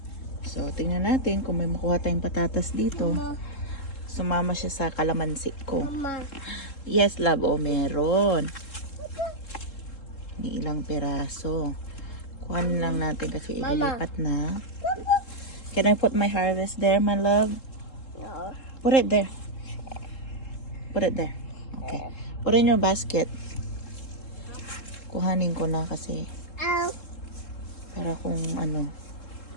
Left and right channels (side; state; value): right; late; 3.7 ms